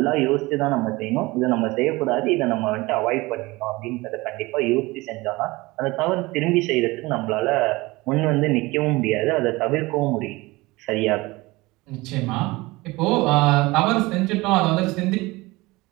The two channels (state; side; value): quieter; left; 21.7 dB